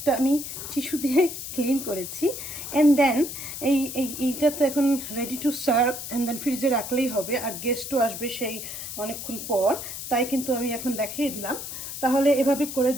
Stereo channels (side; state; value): left; noise; hiss, 8 dB below the sound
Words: আমি টিস্যু দিয়ে ক্লিন করেছি। অ্যান্ড দেন এইটা তো এখন ready to serve, and then ফ্রিজে রাখলেই হবে, আর গেস্টও আসবে সেই অনেকক্ষণ পর, তাই কিন্তু আমি এখন দেখিয়ে দিলাম। তাহলে এভাবে করে